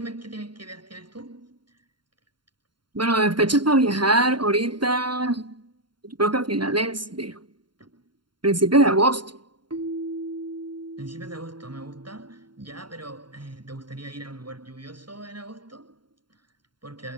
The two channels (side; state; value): left; late; 0.72 ms